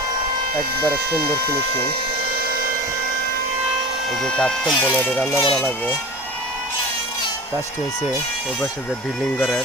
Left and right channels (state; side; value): normal; both; correlation 0.33